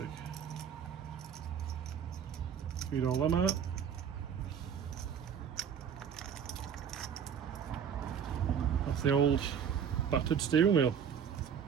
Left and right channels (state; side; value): quieter; left; 7.8 dB